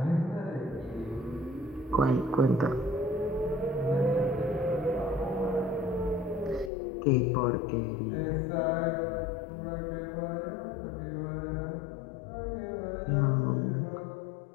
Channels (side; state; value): right; drops out; at 6.7 s